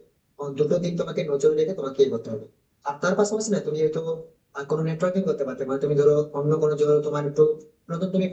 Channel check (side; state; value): both; identical; correlation 1.00